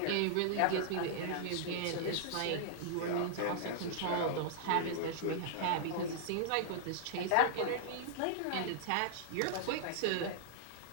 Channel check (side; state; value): both; different; correlation -0.01